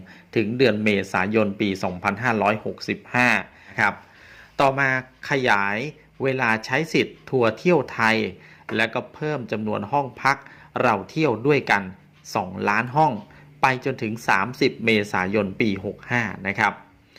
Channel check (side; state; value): both; identical; correlation 1.00